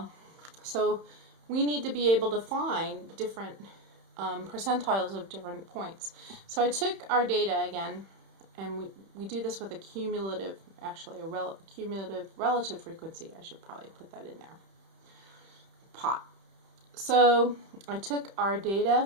so we need to be able to find different percentiles of different points. So I took our data again, and we do this with a cumulative, actually cumulative relative frequency. I should probably put that in there. Pot. So I took our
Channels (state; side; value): late; left; 31 ms